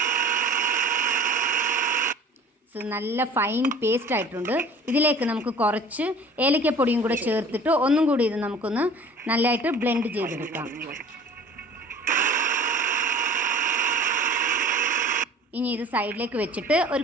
നല്ല ഫൈൻ പേസ്റ്റ് ആയിട്ടുണ്ട്. ഇതിലേക്ക് നമുക്ക് കുറച്ച് ഏലക്കപ്പൊടിയും കൂടെ ചേർത്തിട്ട് ഒന്നും കൂടി ഇത് നമുക്കൊന്ന് നല്ലതായിട്ട് ബ്ലെൻഡ് ചെയ്തെടുക്കാം. ഇനി ഇത് സൈഡിലേക്ക് വെച്ചിട്ട് ഒരു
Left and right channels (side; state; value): both; normal; correlation 0.46